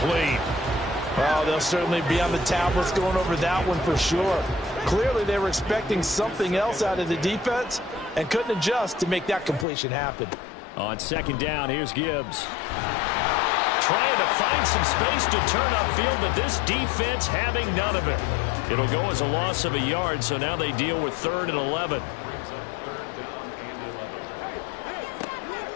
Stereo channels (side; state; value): right; drops out; at 9.7 s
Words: Well, they'll certainly be on the tablets going over that one for sure. Clearly, they were expecting something else out of the defense and couldn't adjust to make that completion happen. On second down, here's Gibbs. Trying to find some space to turn upfield, but this defense having none of it. It'll go as a loss of a yard, so now they deal with 3rd and 11.